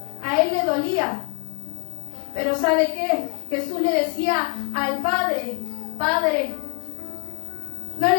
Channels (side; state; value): right; quieter; 34.7 dB